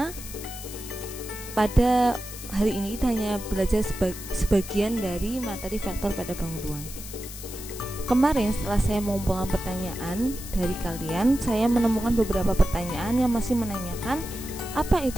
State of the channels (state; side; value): noise; left; hiss, 12 dB below the sound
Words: pada hari ini kita hanya belajar sebagian dari materi vektor pada bangun ruang. Kemarin setelah saya mengumpulkan pertanyaan dari kalian, saya menemukan beberapa pertanyaan yang masih menanyakan apa